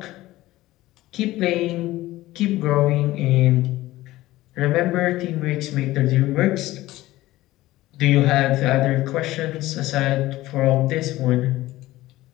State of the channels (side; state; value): right; quieter; 17.0 dB